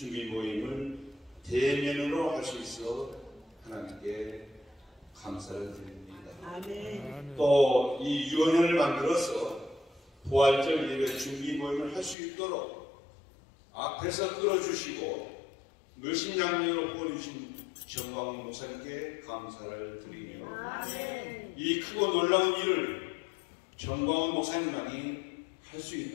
모임을 대면으로 할 수 있어 하나님께 감사를 드립니다. 아멘. 또 이 유언을 만들어서 부활절 예배 준비 모임을 할 수 있도록 앞에서 끌어주시고 물신양리로 보내주신 정광훈 목사님께 감사를 드리며 아멘. 이 크고 놀라운 일을 정광훈 목사님만이 할 수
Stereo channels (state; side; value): drops out; right; at 12.2 s